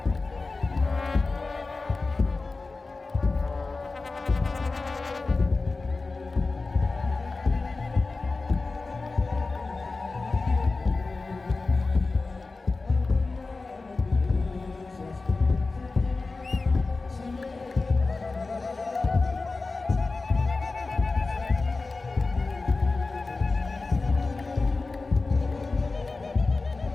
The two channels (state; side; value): quieter; right; 3.7 dB